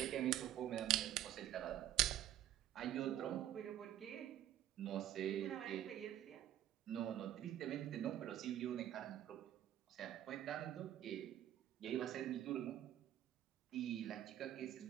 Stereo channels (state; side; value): quieter; left; 12.0 dB